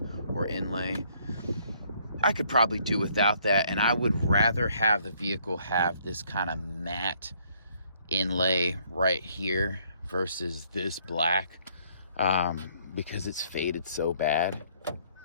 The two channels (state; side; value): inverted; both; correlation -0.65